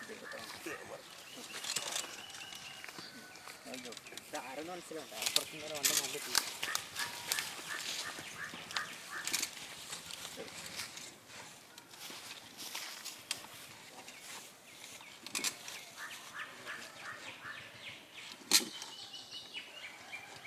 ആരെന്ന് മനസ്സിലുണ്ട് അപ്പുറത്തും നേരെ വന്ന നല്ല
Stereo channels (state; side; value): identical; both; correlation 1.00